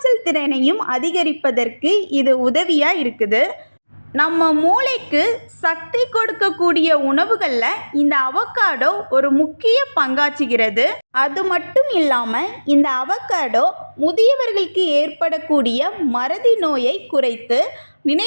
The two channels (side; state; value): both; inverted; correlation -1.00